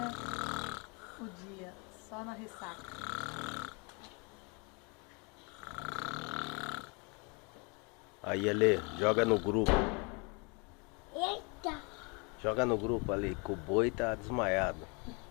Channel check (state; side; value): quieter; right; 32.2 dB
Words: o dia, só na ressaca. Aí, Ale, joga no grupo. Eita! Joga no grupo ali, que o boi tá desmaiado.